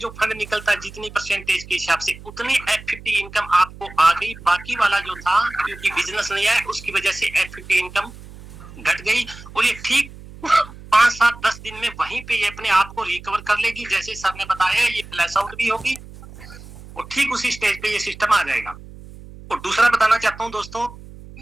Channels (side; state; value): right; noise; hum, 17 dB below the sound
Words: फंड निकलता है जितनी परसेंटेज के हिसाब से उतनी F50 इनकम आपको आ गई। बाकी वाला जो था क्योंकि बिजनेस नहीं आया उसकी वजह से F50 इनकम घट गई और ये ठीक 5-7-10 दिन में वहीं पे ये अपने आप को रिकवर कर लेगी। जैसे सर ने बताया ये फ्लैश आउट भी होगी और ठीक उसी स्टेज पे ये सिस्टम आ जाएगा। और दूसरा बताना चाहता हूं दोस्तों